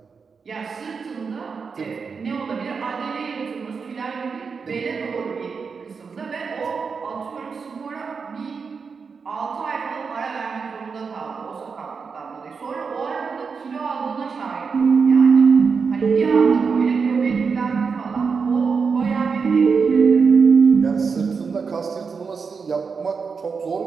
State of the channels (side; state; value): left; quieter; 5.4 dB